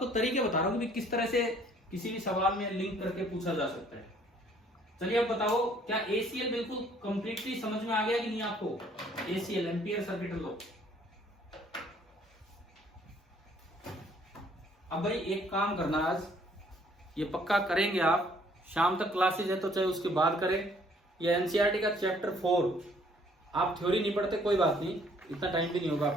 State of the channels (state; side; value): normal; both; correlation 0.61